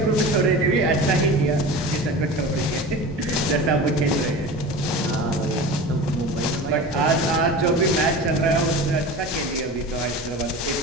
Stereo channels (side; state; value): both; normal; correlation 0.33